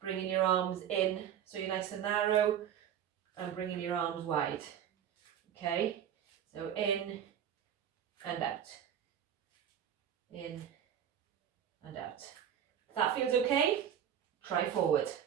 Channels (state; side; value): quieter; left; 9.5 dB